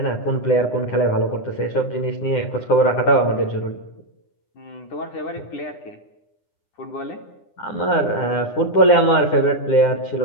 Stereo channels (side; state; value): right; late; 9.8 ms